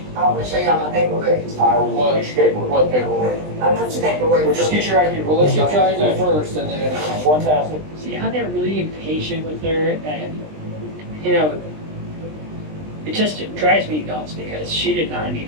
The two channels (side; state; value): left; late; 20 ms